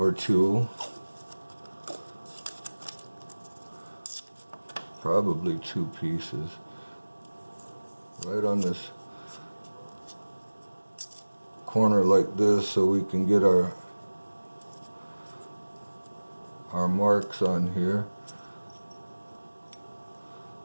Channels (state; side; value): inverted; both; correlation -1.00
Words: two, probably 2 pieces, right on this corner like this so we can get our marks on here.